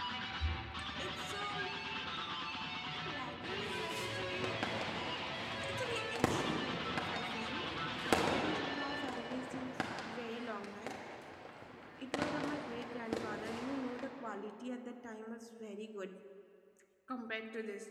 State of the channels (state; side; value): identical; both; correlation 1.00